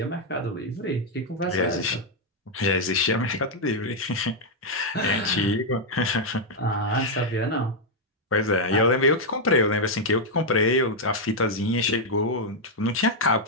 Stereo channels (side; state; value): both; normal; correlation -0.01